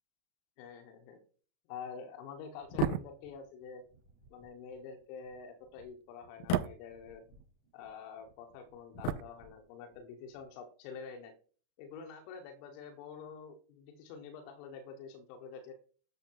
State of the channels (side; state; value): right; late; 35 ms